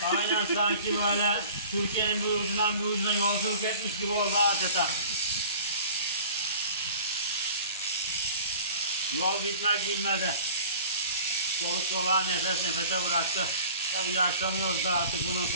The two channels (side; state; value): both; inverted; correlation -0.45